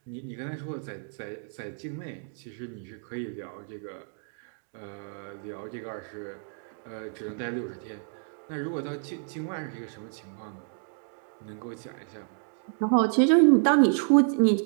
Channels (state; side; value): silent; left; digital silence